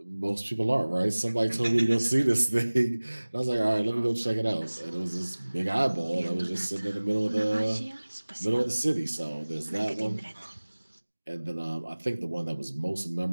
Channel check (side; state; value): both; inverted; correlation -1.00